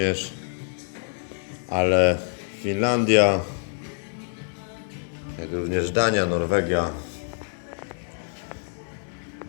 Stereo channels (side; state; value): right; silent; 57 dB below the other